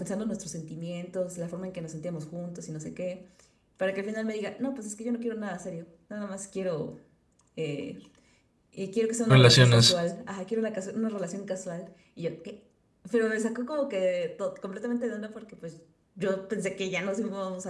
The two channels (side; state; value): both; identical; correlation 1.00